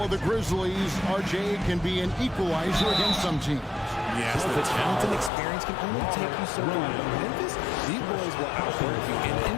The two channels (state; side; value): drops out; right; at 5.3 s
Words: of the Grizzlies, RJ, can be an equalizer against some teams. Yes, the talent and experience can only take you so far. Memphis, these boys will outwork you. And